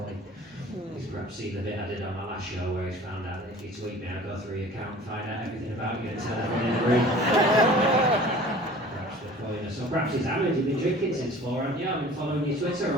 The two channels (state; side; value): normal; both; correlation 0.45